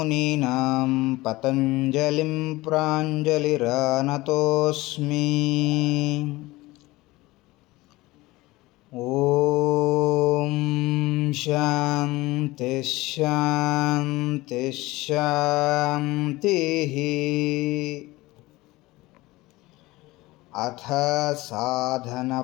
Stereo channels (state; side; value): quieter; right; 19.9 dB